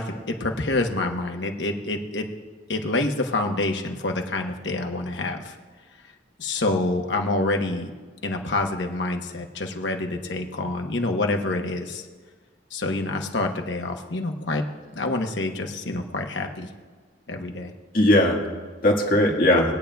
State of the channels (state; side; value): normal; both; correlation 0.37